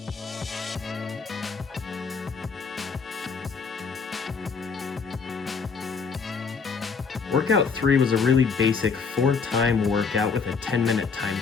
Workout 3 was a really basic 4-time workout with a 10-minute time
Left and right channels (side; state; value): right; quieter; 5.3 dB